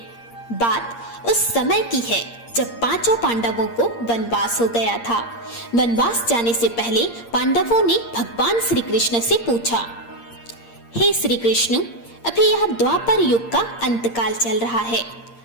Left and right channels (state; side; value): late; right; 8.6 ms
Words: बात उस समय की है जब पांचों पांडवों को वनवास हो गया था। वनवास जाने से पहले पांडवों ने भगवान श्री कृष्ण से पूछा, हे श्री कृष्ण, अभी यह द्वापर युग का अंतकाल चल रहा है।